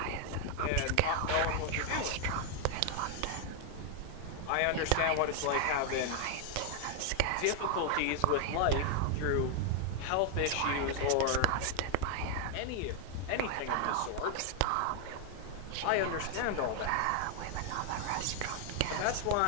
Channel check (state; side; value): different; both; correlation 0.00